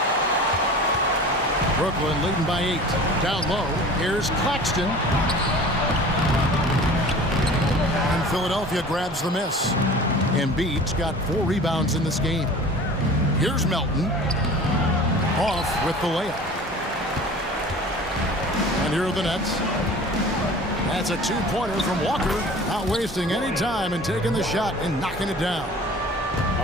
Brooklyn leading by 8. Down low, here's Claxton. And Philadelphia grabs the miss. Embiid's got 4 rebounds in this game. Here's Melton. Off with the layup. And here are the Nets. That's a 2-pointer from Walker. Not wasting any time and taking the shot and knocking it down.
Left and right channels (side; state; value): both; normal; correlation 0.42